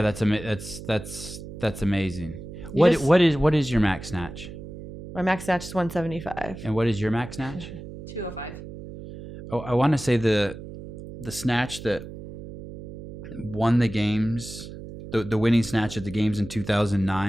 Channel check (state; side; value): noise; right; hum, 12 dB below the sound